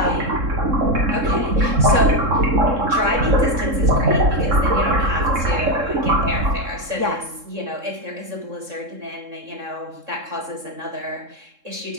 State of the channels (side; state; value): left; late; 3.7 ms